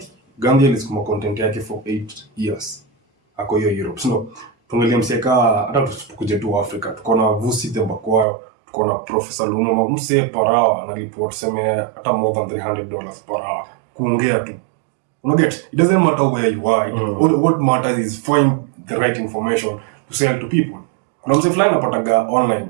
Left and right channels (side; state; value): left; drops out; at 8.2 s